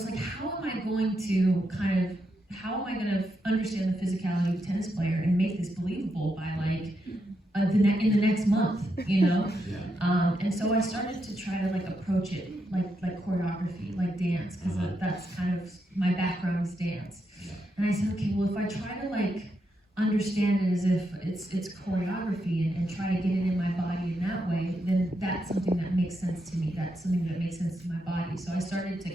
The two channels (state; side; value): normal; both; correlation 0.82